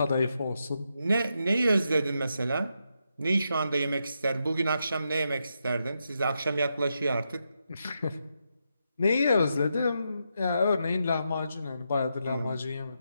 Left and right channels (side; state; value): both; inverted; correlation -0.84